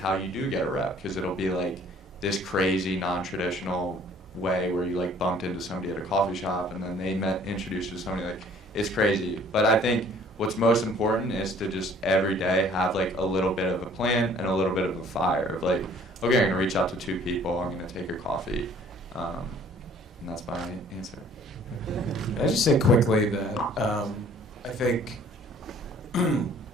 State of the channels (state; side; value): normal; both; correlation 0.55